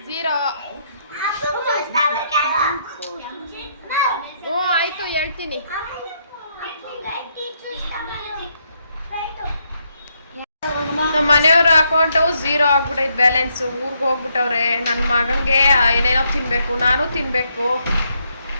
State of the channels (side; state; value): both; inverted; correlation -0.76